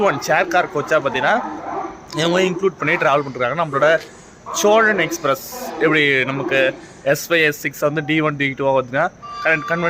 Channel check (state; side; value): identical; both; correlation 1.00